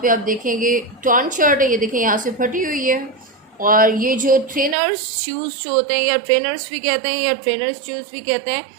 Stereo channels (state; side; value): drops out; left; at 4.8 s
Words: पे आप देखेंगे टॉर्न शर्ट है, ये देखें यहाँ से फटी हुई है। और ये जो ट्रेनर्स शूज़ जो होते हैं, या ट्रेनर्स भी कहते हैं या ट्रेनर्स शूज़ भी कहते हैं,